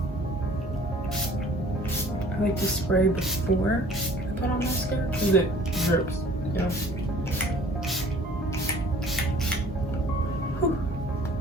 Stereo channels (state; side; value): normal; both; correlation 0.52